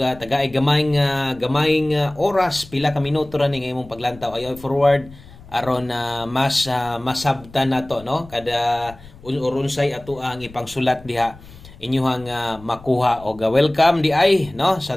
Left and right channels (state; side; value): noise; left; rumble, 20 dB below the sound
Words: gamayng oras pila ka minuto ra ning imong paglantaw ayo forward aron mas masabtan nato, no, kada urunsay ato ang ipangsulat diha inyuhang makuha og welcome di ay, no,